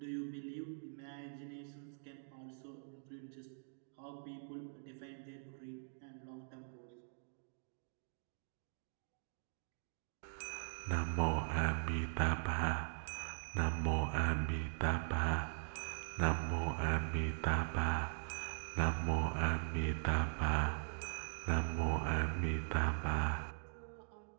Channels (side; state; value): left; silent; digital silence